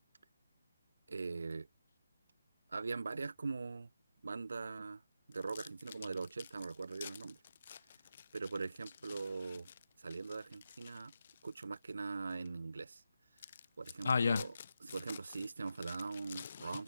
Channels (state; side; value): inverted; both; correlation -0.89